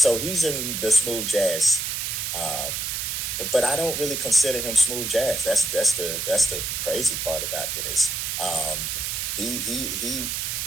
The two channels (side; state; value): right; noise; hiss, 2 dB below the sound